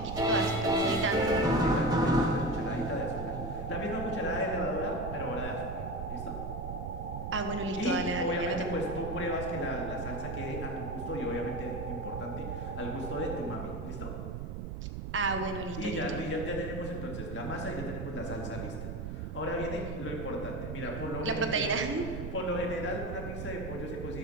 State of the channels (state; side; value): noise; right; rumble, 5 dB below the sound